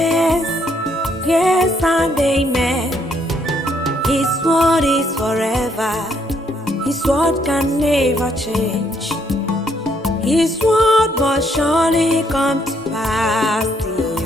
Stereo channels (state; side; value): normal; both; correlation 0.71